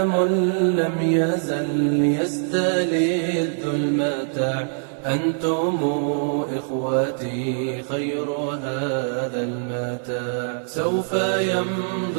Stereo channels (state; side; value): silent; left; digital silence